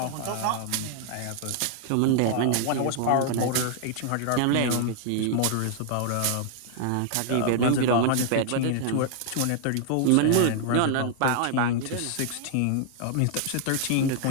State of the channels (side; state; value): both; different; correlation 0.00